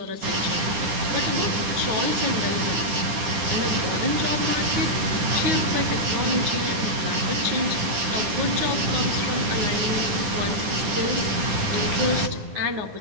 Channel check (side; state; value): left; late; 10 ms